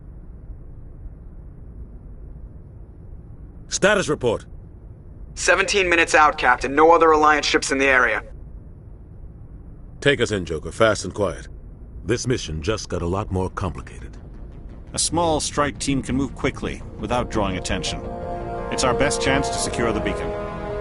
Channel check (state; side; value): identical; both; correlation 1.00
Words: Status report. 17 minutes out, Captain. No other Alliance ships in the area. Take us in, Joker. Fast and quiet. This mission just got a lot more complicated. A small strike team can move quickly, without drawing attention. It's our best chance to secure the beacon.